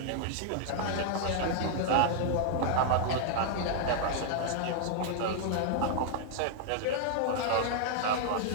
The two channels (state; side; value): different; both; correlation -0.01